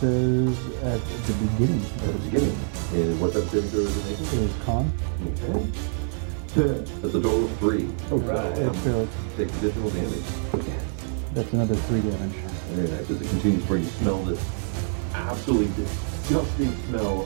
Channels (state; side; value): silent; left; digital silence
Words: at the beginning of At the its beginning. And what type of saving throw is it making? turn is con. Okay. That's a total of 3. Right. It fails. Takes additional damage. Yes. That's another 3 damage. Very nice. As it continues to burn, you smell this absolutely disgusting